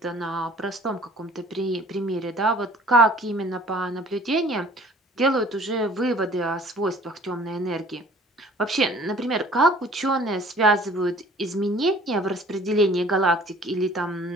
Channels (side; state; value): both; normal; correlation 0.51